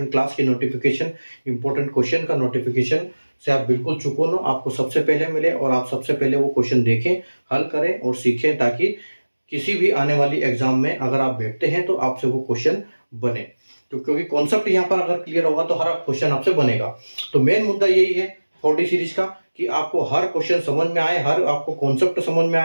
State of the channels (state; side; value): inverted; both; correlation -1.00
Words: क्लास की नोटिफिकेशन, इंपॉर्टेंट क्वेश्चन का नोटिफिकेशन से आप बिल्कुल चूको ना, आपको सबसे पहले मिले और आप सबसे पहले वो क्वेश्चन देखें, हल करें और सीखें, ताकि किसी भी आने वाली एग्जाम में अगर आप बैठते हैं तो आपसे वो क्वेश्चन बने। तो क्योंकि कॉन्सेप्ट यहाँ पर अगर क्लियर होगा तो हर क्वेश्चन आपसे बनेगा। तो मेन मुद्दा यही है 4D सीरीज का, कि आपको हर क्वेश्चन समझ में आए, हर आपको कॉन्सेप्ट समझ में